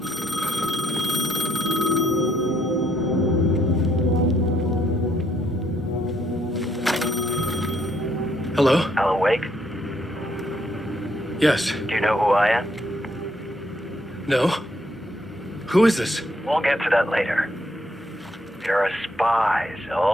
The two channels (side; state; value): both; normal; correlation 0.72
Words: Hello? Alan Wake? Yes. Do you know who I am? No? Who is this? We'll get to that later. There are spies